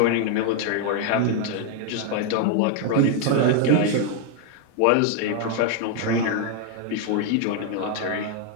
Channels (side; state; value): both; different; correlation 0.01